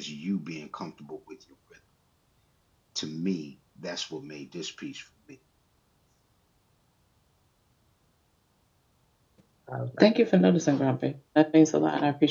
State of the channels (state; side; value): identical; both; correlation 1.00